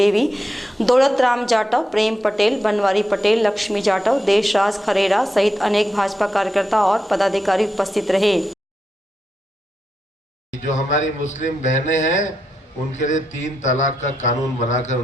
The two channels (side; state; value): both; normal; correlation 0.85